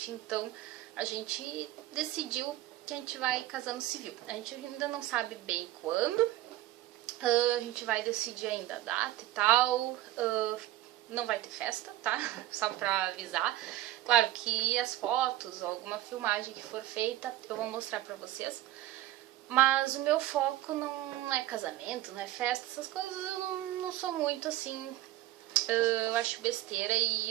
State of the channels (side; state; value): left; quieter; 14.8 dB